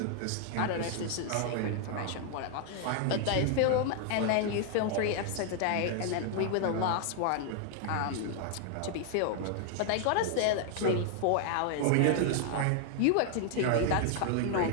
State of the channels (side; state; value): both; different; correlation 0.00